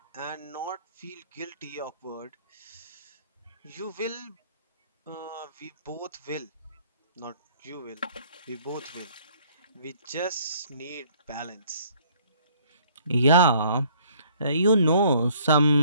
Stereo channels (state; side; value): inverted; both; correlation -0.60